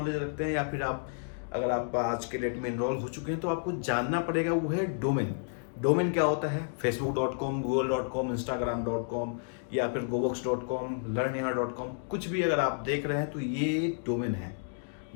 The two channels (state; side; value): silent; right; digital silence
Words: रखते हैं या फिर अगर आप आज के डेट में इनरोल हो चुके हैं तो आपको जानना पड़ेगा वो है डोमेन क्या होता है। facebook.com, google.com, instagram.com या फिर gobox.com, learnyaha.com, कुछ भी अगर आप देख रहे हैं तो ये डोमेन है।